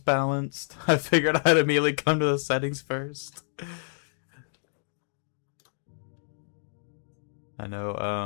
I figured I'd immediately come to the settings first. I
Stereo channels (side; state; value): right; silent; digital silence